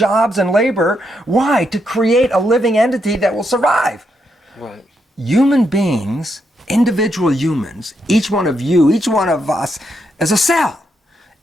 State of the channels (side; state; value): both; normal; correlation 0.80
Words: and labor. Why? To create a living entity that will survive. Right. Human beings, individual humans, each one of you, each one of us, is a cell